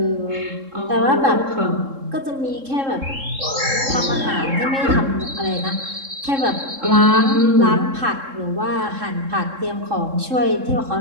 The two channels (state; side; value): late; left; 3.7 ms